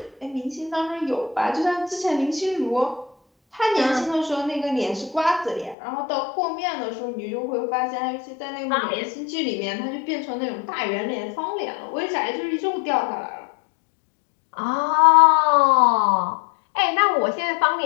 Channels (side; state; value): right; drops out; at 5.8 s